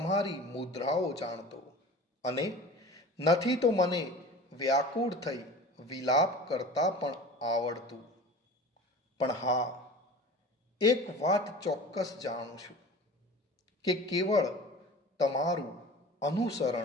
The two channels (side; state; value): both; normal; correlation 0.38